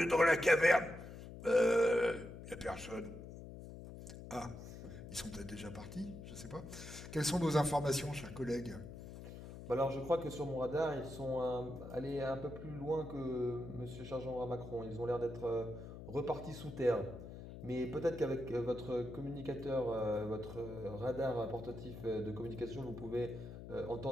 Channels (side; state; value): left; noise; hum, 12 dB below the sound